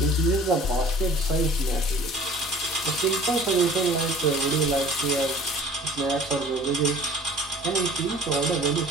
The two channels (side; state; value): both; normal; correlation 0.48